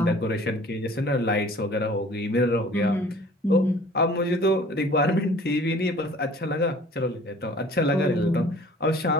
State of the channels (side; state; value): both; normal; correlation 0.49